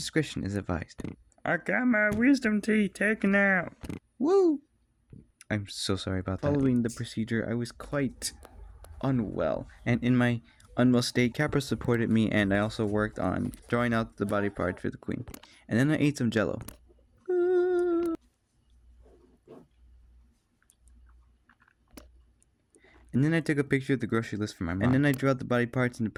is advised. I got my wisdom teeth taken out. Woo! I'm so sorry about that. Following the procedure, I was quite unwell, and in my unwell state, Capra supported me, and I also worked on drawing out the body parts for the queen. And then I ate some jello. And then I took a picture of the grocery list for my mom. And then I drew out the body parts and the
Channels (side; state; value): both; identical; correlation 1.00